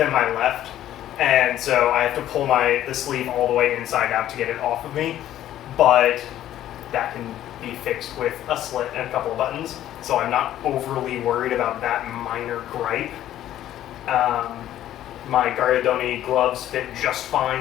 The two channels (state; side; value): quieter; right; 12.4 dB